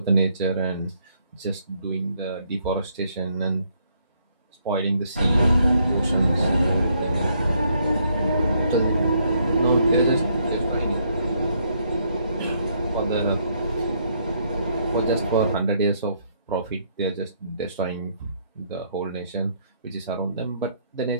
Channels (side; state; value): both; inverted; correlation -0.71